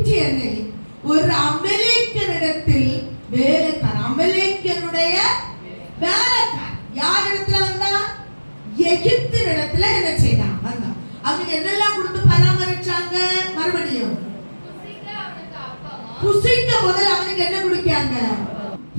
ஒரு அமலேக்கியனிடத்தில் வேலைக்காரன், அமலேக்கியனுடைய வேலைக்காரன் யார் இடத்துல வந்தா? எகிப்தினிடத்துல என்ன செய்தான்? வந்தான். அவனுக்கு என்னெல்லாம் கொடுத்து பராமரிச்சாங்க? மறுபடியும் புசிக்க முதல்ல அவனுக்கு என்ன கொடுக்காங்க?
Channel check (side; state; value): both; inverted; correlation -1.00